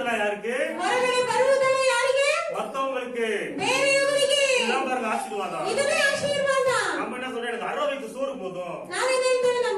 யாருக்கு? ಹೊರಗಡೆ ಬರುವುದೆಲ್ಲ ಯಾರಿಗೆ? மத்தவங்களுக்கு. ಬೇರೆಯವರಿಗೆ. இதெல்லாம் பாருங்க ஆசீர்வாதம். ಇದನ್ನೇ ಆಶೀರ್ವಾದ. நம்ம என்ன சொல்றோம், எனக்கு 60 வயிற்று சோறு போதும். ನಾವೇನ್ ಹೇಳ್ತೇವೆ,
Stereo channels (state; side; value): identical; both; correlation 1.00